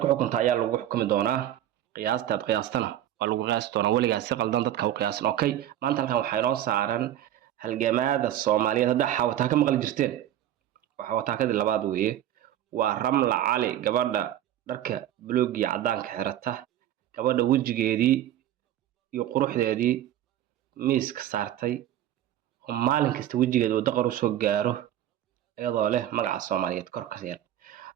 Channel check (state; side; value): quieter; left; 12.0 dB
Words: ku xukunta ayaa lagu xukumi doonaa qiyaastaad qiyaastana waa lagu qiyaasi doonaa weligaas si qaldan dadka u qiyaasan okay maanta halkan waxaa inoo saaran halgamaada Soomaaliyeed hadda xawataa ka maqli jirteen waxa wataakadii labaad weeye waa Ramla Cali gabadha dharka buluug iyo cadaanka xirata gabadha wajigeedii iyo quruxdeedii miiska saartay oo maalin kasta wajigeeda uu daqar u soo gaaro iyadoo leh magaca Soomaaliyeed kor ka yar